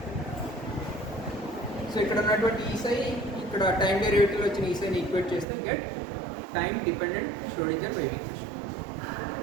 సో ఇక్కడ ఉన్నటువంటి ఈ సై ఇక్కడ టైం డెరివేటివ్ వచ్చిన ఈ సైని ఈక్వేట్ చేస్తే get time dependent Schrodinger wave equation.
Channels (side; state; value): left; drops out; at 5.5 s